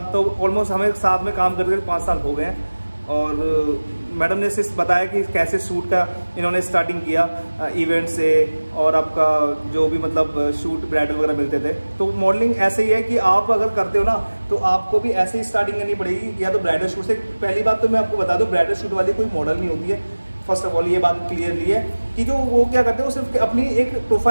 तो ऑलमोस्ट हमें साथ में काम करते 5 साल हो गए। और मैडम ने सिर्फ बताया कि कैसे शूट का इन्होंने स्टार्टिंग किया इवेंट से, और आपका जो भी मतलब शूट ब्राइडल वगैरह मिलते थे। तो मॉडलिंग ऐसे ही है कि आप अगर करते हो ना तो आपको भी ऐसे ही स्टार्टिंग करनी पड़ेगी, या तो ब्राइडल शूट से। पहली बात तो मैं आपको बता दूं, ब्राइडल शूट वाली कोई मॉडल नहीं होती है। फर्स्ट ऑफ ऑल ये बात क्लियरली है कि जो वो क्या करते हैं, वो सिर्फ अपनी एक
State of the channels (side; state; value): both; inverted; correlation -1.00